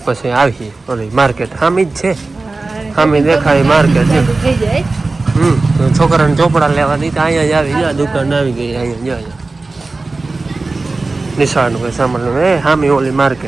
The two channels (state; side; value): quieter; left; 3.5 dB